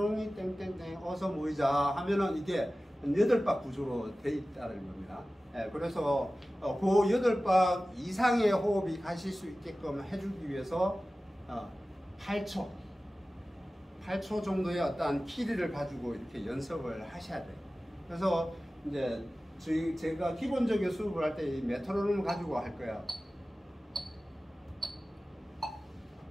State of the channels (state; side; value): normal; both; correlation 0.96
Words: 땡땡땡 어서 모이자 하면은 이게 8박 구조로 돼 있다는 겁니다. 그래서 그 8박 이상의 호흡이 가실 수 있게끔 해주기 위해서 8초 정도의 어떤 키리를 가지고 이렇게 연습을 하셔야 돼요. 그래서 이제 제가 기본적인 수업을 할 때 이 메트로놈을 가지고 할 거예요.